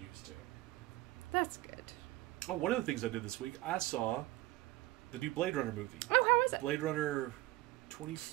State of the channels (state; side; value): quieter; left; 18.6 dB